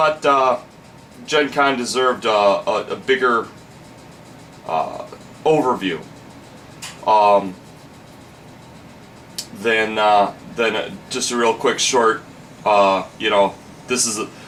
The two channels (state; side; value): identical; both; correlation 1.00